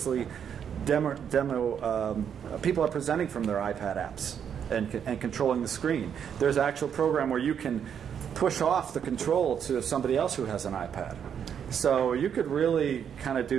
demo. People are presenting from their iPad apps and controlling the screen. There's an actual program where you can push off the control to somebody else who has an iPad. So you could really kind of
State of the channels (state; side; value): quieter; left; 8.1 dB